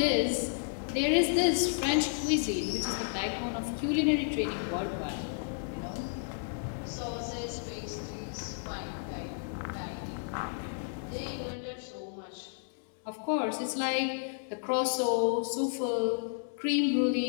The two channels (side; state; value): right; silent; digital silence